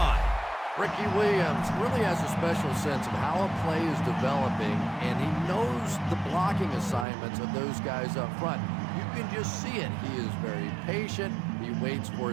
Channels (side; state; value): left; drops out; at 7.1 s